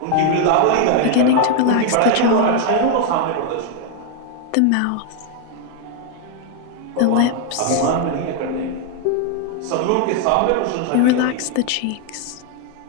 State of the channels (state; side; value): different; both; correlation 0.01